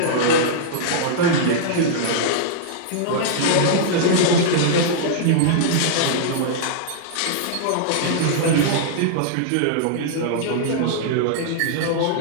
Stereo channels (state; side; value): different; both; correlation -0.02